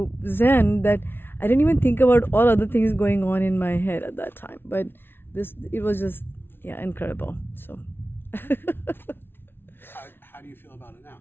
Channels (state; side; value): late; right; 0.11 ms